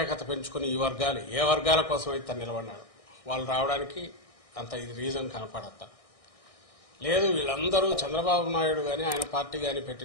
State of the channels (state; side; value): late; right; 1.6 ms